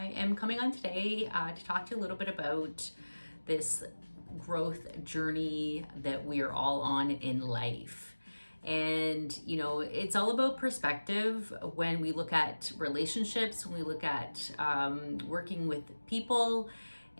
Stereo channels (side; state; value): both; inverted; correlation -1.00